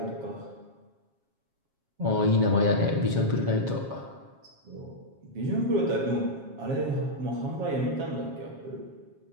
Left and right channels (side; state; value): left; late; 7.4 ms